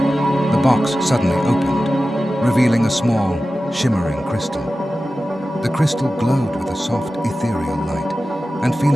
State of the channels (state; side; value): normal; both; correlation 0.94